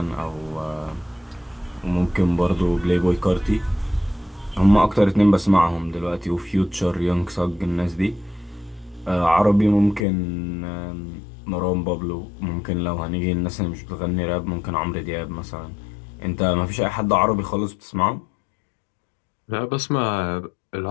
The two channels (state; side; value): drops out; right; at 10.1 s